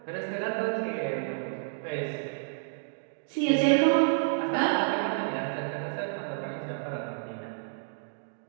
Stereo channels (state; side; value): silent; left; digital silence